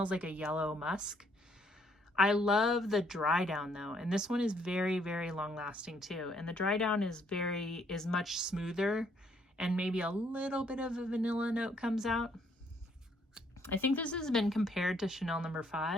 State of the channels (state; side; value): normal; both; correlation 0.68